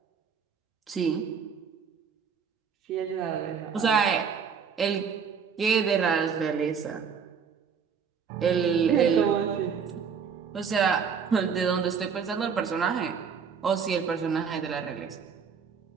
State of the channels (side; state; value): left; quieter; 6.5 dB